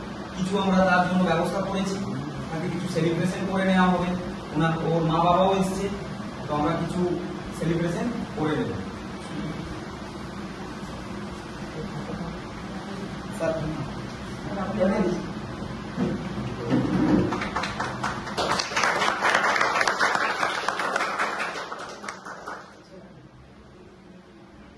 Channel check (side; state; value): both; identical; correlation 1.00